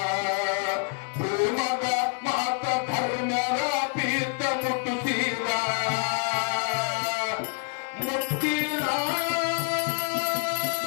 ಭೂಮಗ ಮಾತ ಧರ್ಮರ ಪೀತ ಮುಟ್ಟಿಸೀರ ಮುಟ್ಟಿರ.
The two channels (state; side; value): quieter; right; 36.1 dB